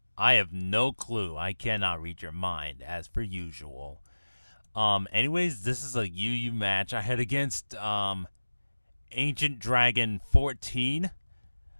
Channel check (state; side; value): inverted; both; correlation -1.00